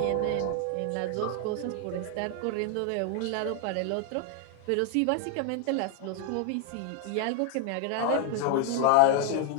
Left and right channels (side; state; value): both; different; correlation 0.00